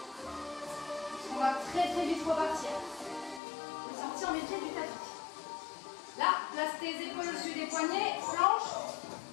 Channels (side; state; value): right; drops out; at 3.4 s